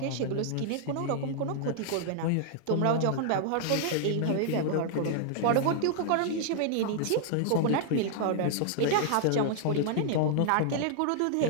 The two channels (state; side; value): different; both; correlation -0.01